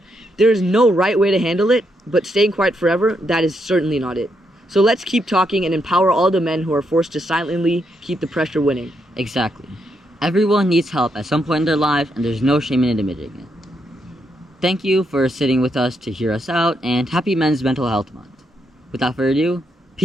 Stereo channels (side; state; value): both; normal; correlation 0.79